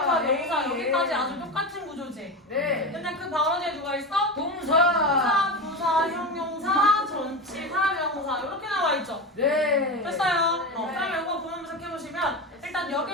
명사 여기까지 아주 똑같은 구조지? 네. 근데 그 바로 뒤에 누가 있어? 동사. 부사, 형용사, 전치사, 명사 이렇게 나와 있죠? 네. 됐어요. 그러면 이거 보면 해보시면 일단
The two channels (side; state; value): both; normal; correlation 0.21